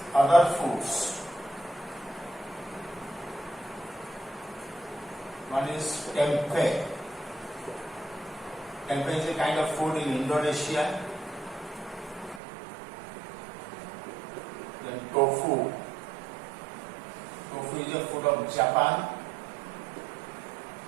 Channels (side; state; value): left; drops out; at 12.4 s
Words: Other foods. One is tempeh. Tempeh is a kind of food in Indonesia. Then tofu. Tofu is a food of Japan.